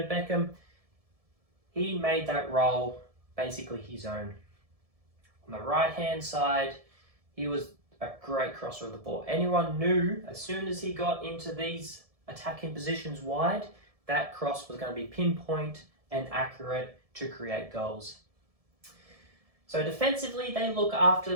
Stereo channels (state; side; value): late; left; 1.7 ms